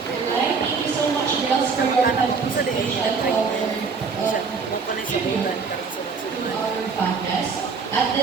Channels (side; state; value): left; quieter; 5.0 dB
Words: Thank you so much, girls, for your Sa di ay siya try. Siya mo pa na sa bulan karon sa our podcast. At